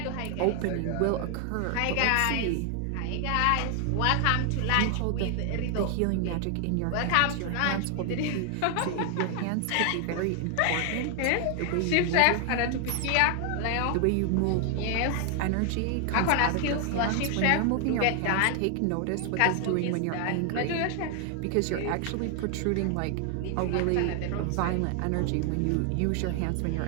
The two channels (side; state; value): both; different; correlation 0.00